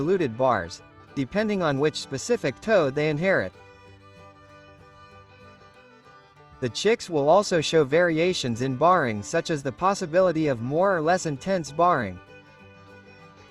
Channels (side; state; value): both; identical; correlation 1.00